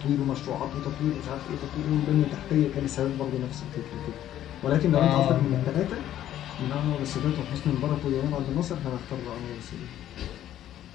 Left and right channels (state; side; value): quieter; right; 12.0 dB